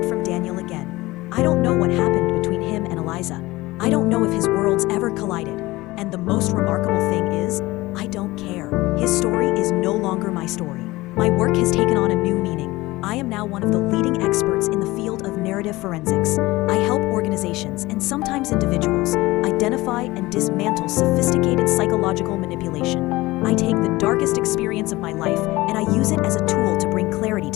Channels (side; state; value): right; quieter; 19.7 dB